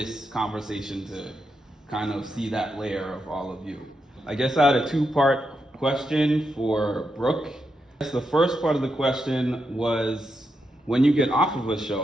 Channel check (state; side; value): normal; both; correlation 0.84